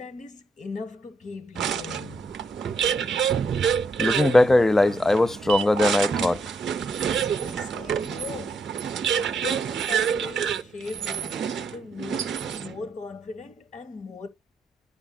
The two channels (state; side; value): normal; both; correlation 0.77